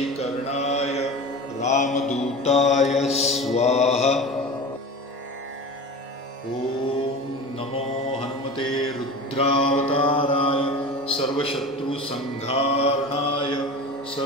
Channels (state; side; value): normal; both; correlation 0.32